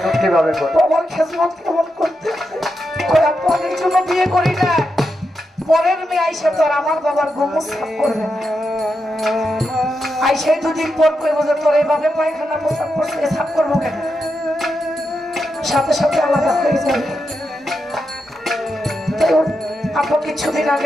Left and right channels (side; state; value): both; normal; correlation 0.86